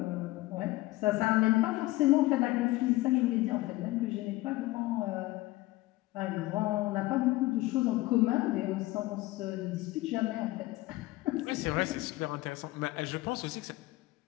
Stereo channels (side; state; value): right; quieter; 18.9 dB